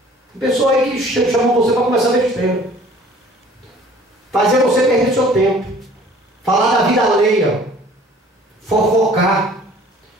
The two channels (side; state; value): both; normal; correlation 0.51